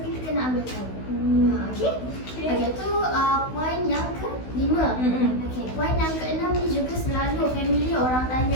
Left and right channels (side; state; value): right; late; 16 ms